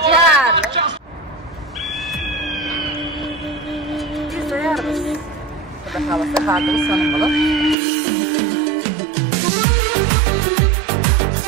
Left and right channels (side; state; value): left; drops out; at 7.8 s